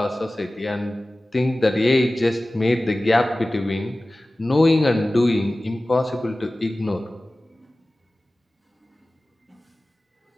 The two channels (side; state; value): both; normal; correlation 0.97